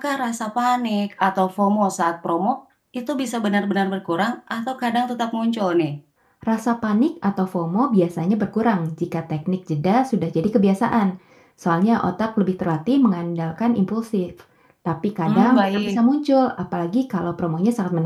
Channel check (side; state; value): both; identical; correlation 1.00